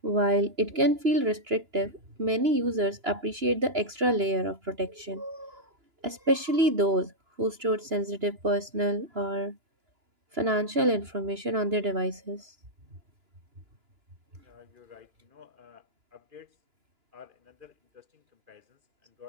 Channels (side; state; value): left; late; 2.9 ms